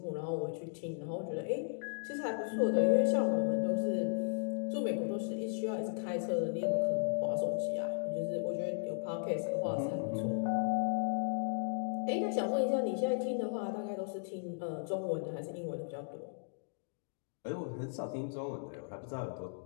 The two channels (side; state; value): right; silent; digital silence